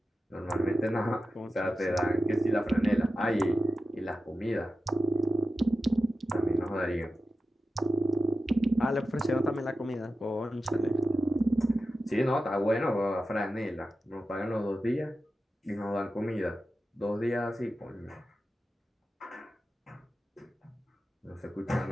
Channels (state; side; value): normal; both; correlation 0.92